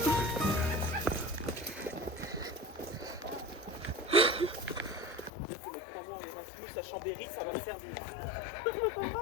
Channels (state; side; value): drops out; right; at 5.3 s